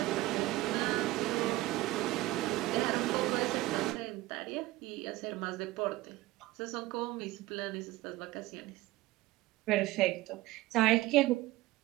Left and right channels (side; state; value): left; quieter; 18.1 dB